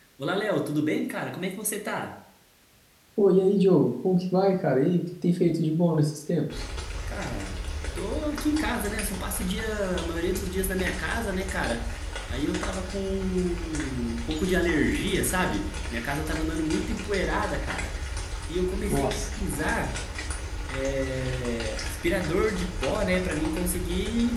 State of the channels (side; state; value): both; identical; correlation 1.00